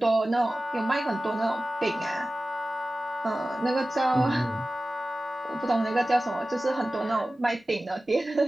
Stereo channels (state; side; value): normal; both; correlation 0.96